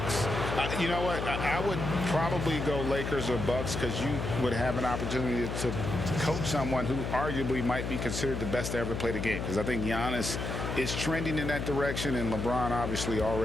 You know what? I would probably go Lakers or Bucks because you would have an opportunity to coach someone who arguably might be considered the best to ever play the game. Because I think Giannis is trending in that direction, and LeBron obviously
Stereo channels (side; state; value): left; noise; hum, 3 dB below the sound